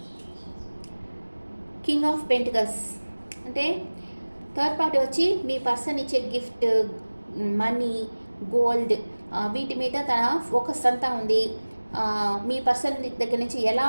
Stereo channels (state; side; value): inverted; both; correlation -1.00